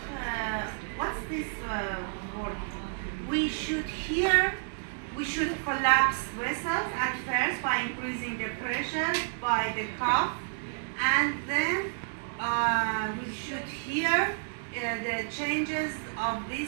this word? We should collapse vessels at first by increasing the pressure by the cuff, and then we should hear the changes of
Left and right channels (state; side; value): silent; left; digital silence